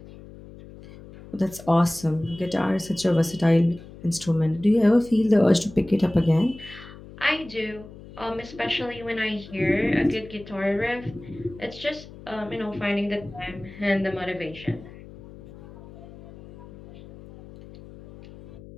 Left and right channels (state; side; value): noise; left; hum, 18 dB below the sound